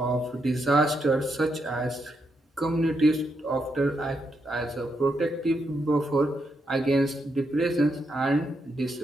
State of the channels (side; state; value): both; normal; correlation 0.81